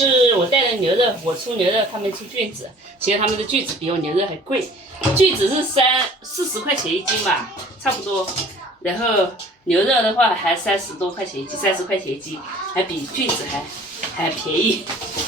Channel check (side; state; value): both; normal; correlation 0.50